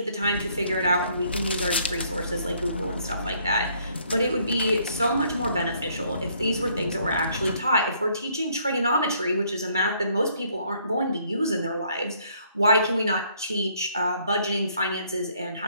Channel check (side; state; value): both; inverted; correlation -0.66